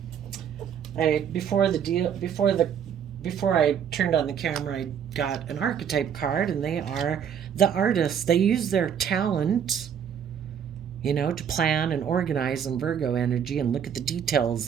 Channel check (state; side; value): quieter; left; 8.2 dB